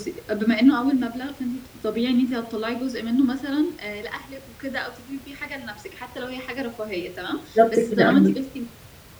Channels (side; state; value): both; identical; correlation 1.00